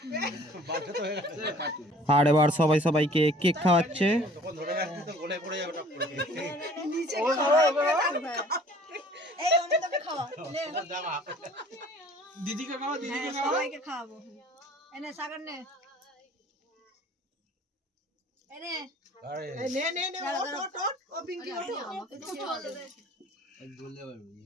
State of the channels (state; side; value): normal; both; correlation 0.52